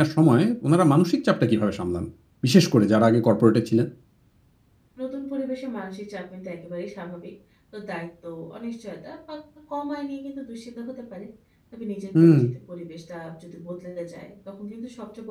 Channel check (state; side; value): identical; both; correlation 1.00